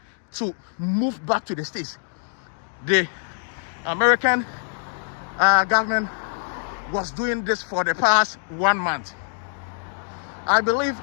to move back to the States. The American government was doing this for the past 1 month. I believe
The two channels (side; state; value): right; silent; digital silence